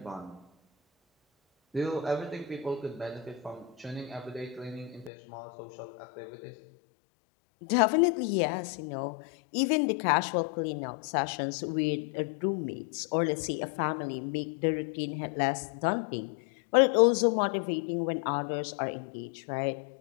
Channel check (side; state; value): right; drops out; at 5.1 s